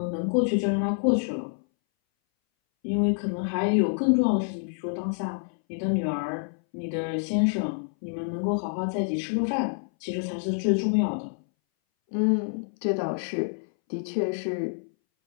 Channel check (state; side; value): silent; right; 60 dB below the other